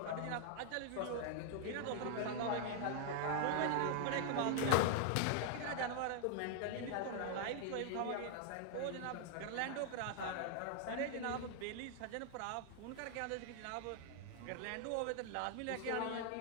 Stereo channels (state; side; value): different; both; correlation 0.00